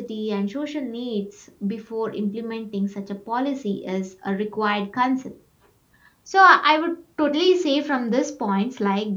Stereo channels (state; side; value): identical; both; correlation 1.00